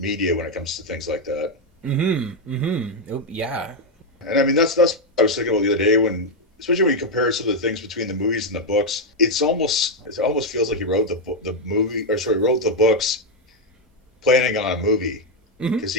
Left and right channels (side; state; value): both; normal; correlation 0.02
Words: when it comes to things like that. Mm-hmm. Mm-hmm. Oh, yeah. And I mean that's what I was thinking about the other day, especially when you compare some of the things between the movies and the books. It almost feels like he wrote wrote the books planning on a movie, because